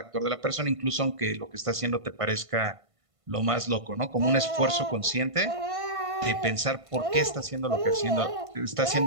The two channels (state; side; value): late; left; 1.5 ms